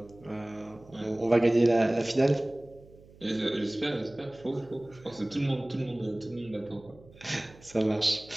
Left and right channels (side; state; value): right; noise; hum, 23 dB below the sound